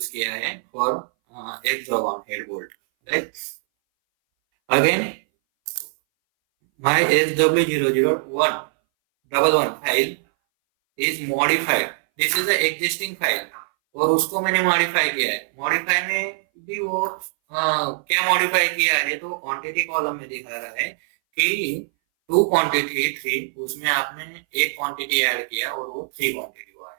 किया है for hexagon head bolt, right? Again, my SW00111 file is modified. This is the existing file, और उसको मैंने मॉडिफाई किया है. मॉडिफाई में भी वो क्या मॉडिफाई किया है तो क्वांटिटी कॉलम में दिखा रहा है कि 2 क्वांटिटी 3, उसमें आपने एक क्वांटिटी ऐड किया और वो 3 क्वांटिटी हुआ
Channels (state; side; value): silent; left; 60 dB below the other